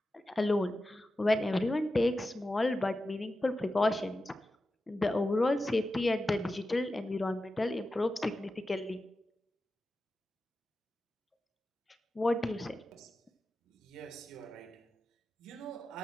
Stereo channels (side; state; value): both; normal; correlation 0.92